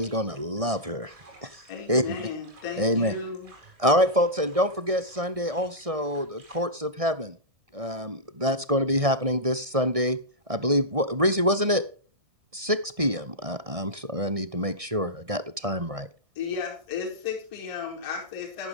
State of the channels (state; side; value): late; left; 1.6 ms